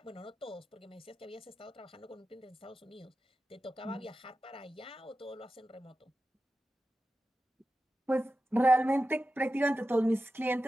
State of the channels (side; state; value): both; normal; correlation 0.92